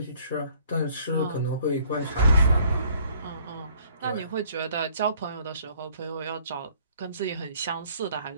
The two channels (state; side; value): inverted; both; correlation -0.60